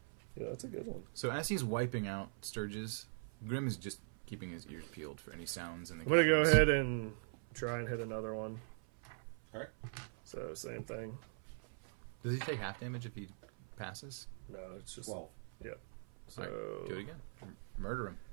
yeah, that's a good one. So as he's wiping out Sturges, Grim is just keeping his ears peeled for any sounds in the I'm gonna go caverns. ahead and try and hit another one. Alright. So same thing. Does he take half damage if he passes? No, it's just 12. So All right, do it again. Murder him.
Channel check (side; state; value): left; silent; 50 dB below the other